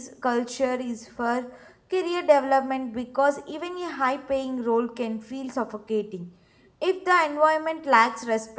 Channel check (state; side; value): identical; both; correlation 1.00